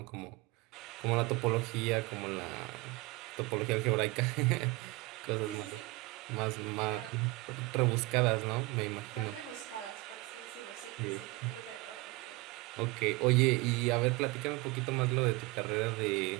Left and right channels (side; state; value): left; quieter; 22.7 dB